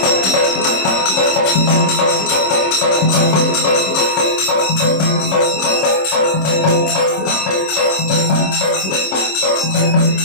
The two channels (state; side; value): late; right; 26 ms